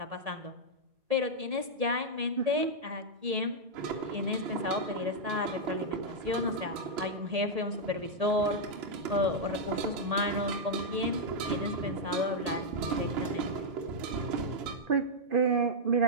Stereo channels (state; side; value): late; left; 1.8 ms